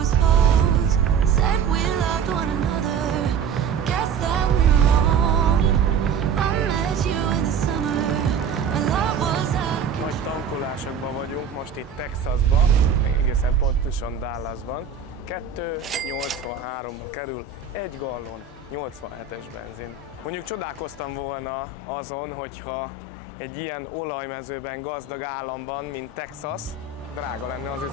Nagy tankolásokban vagyunk most itt Texasban, egészen pontosan Dallasban. 2,83-ba kerül egy gallon 87-es benzin. Mondjuk csodálkoztam volna azon, hogyha egy ilyen olajmezőben gazdag államban, mint Texas, drága lenne az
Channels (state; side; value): quieter; left; 6.3 dB